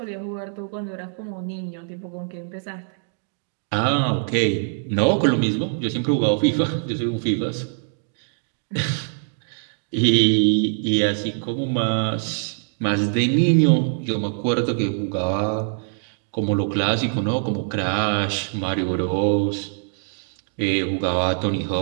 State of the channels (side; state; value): left; silent; digital silence